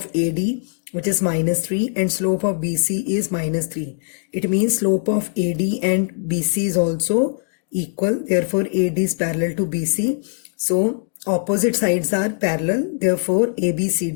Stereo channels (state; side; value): silent; right; digital silence